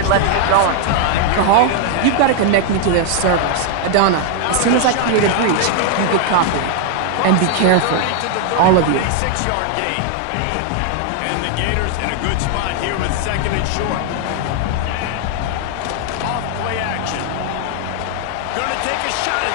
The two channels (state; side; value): different; both; correlation 0.00